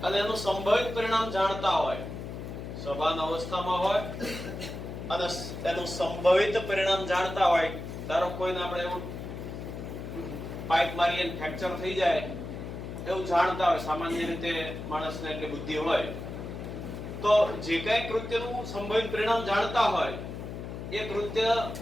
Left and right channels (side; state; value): left; noise; hum, 8 dB below the sound